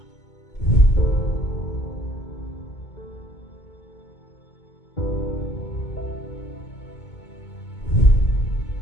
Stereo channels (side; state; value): right; late; 2.2 ms